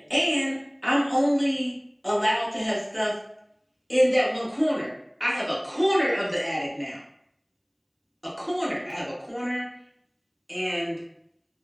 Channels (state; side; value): identical; both; correlation 1.00